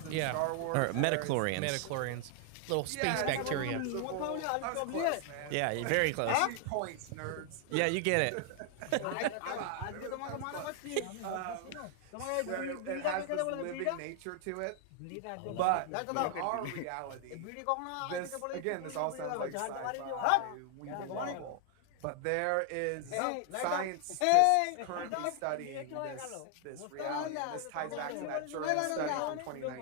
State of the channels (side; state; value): both; different; correlation 0.00